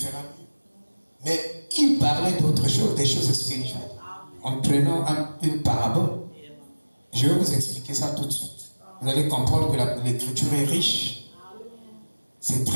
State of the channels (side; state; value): both; inverted; correlation -1.00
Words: mieux. Mais il parlait d'autre chose, des choses spirituelles. En prenant une parabole. Je vais vous expliquer ça tout de suite. Vous allez comprendre que l'écriture est riche. C'est